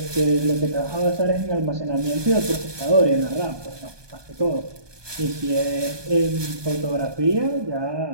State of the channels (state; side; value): late; left; 1.2 ms